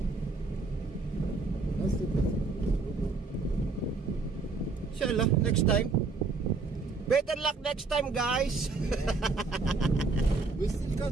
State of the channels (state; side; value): quieter; left; 3.9 dB